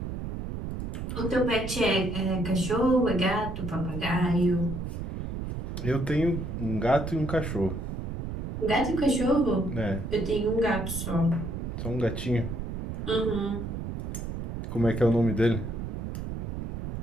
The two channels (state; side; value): noise; right; rumble, 4 dB below the sound